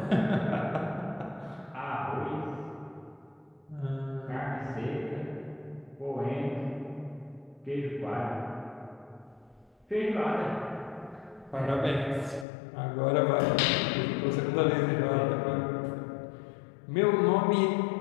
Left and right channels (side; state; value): right; drops out; at 12.5 s